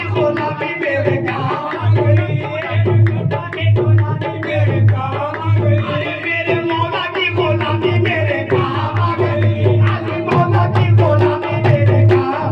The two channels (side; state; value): both; identical; correlation 1.00